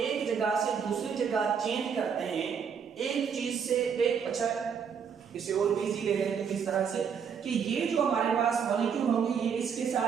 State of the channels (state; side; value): quieter; left; 6.9 dB